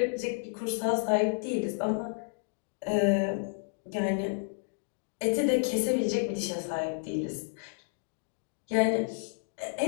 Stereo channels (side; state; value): right; silent; digital silence